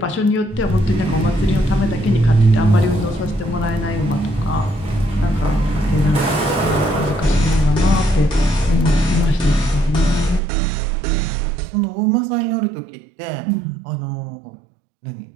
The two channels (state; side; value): drops out; left; at 10.4 s